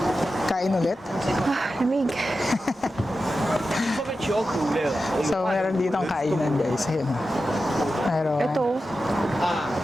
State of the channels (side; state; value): both; normal; correlation 0.92